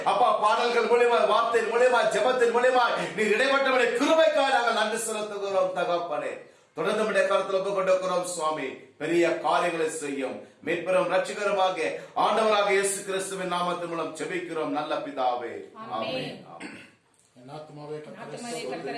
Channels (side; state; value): both; identical; correlation 1.00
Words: அப்பா பாடல்கள் மூலியமா, வார்த்தையின் மூலியமா, ஜெபத்தின் மூலியமா நீர் இடைப்பட்டவனை கிருபைக்காக நாங்கள் நன்றி செலுத்துகிறோம் தகப்பனே. தொடர்ந்து நம்முடைய கருத்தில் ஒப்புக் கொண்டிருக்கிறோம் சுவாமி. பெரிய காரியங்களை செய்யும் மீட்பெரும் ரட்சகருமாக ஆண்டவராக இயேசு கிறிஸ்துவின் நாமத்தின் மூலம் ஜெபிக்கிறோம் நல்ல பிதாவே. ஆமென். என் ஆத்துமாவே